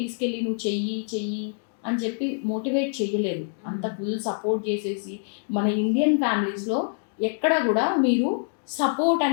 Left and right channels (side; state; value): right; silent; digital silence